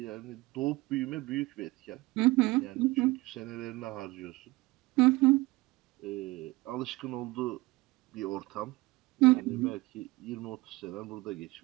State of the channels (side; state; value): left; quieter; 20.9 dB